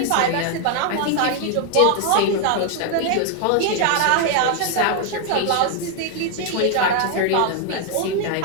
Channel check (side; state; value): both; different; correlation 0.00